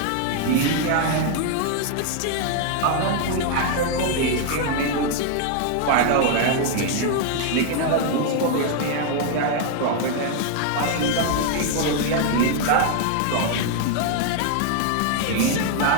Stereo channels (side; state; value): both; different; correlation 0.00